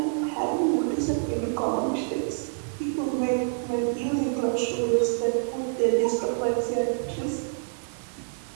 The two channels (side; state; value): left; silent; digital silence